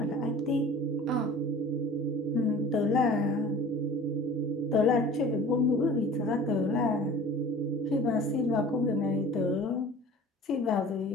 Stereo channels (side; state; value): both; normal; correlation 0.43